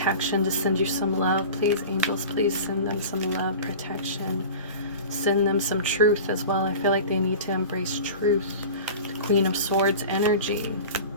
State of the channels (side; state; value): both; inverted; correlation -0.36